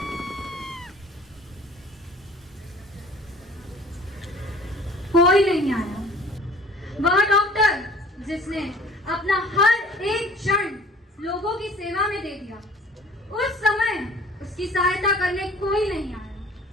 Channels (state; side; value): normal; both; correlation 0.50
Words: कोई नहीं आया। वह डॉक्टर जिसने अपना हर एक क्षण लोगों की सेवा में दे दिया, उस समय उसकी सहायता करने कोई नहीं